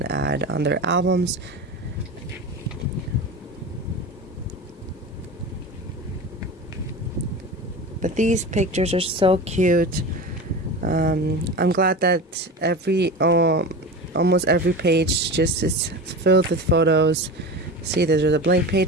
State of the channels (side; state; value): both; normal; correlation 0.29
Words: ad on their albums. But these pictures are so cute. I'm glad that almost every page just is filled with photos. See, there's a blank